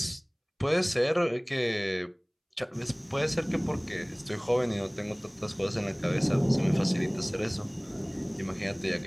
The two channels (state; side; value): identical; both; correlation 1.00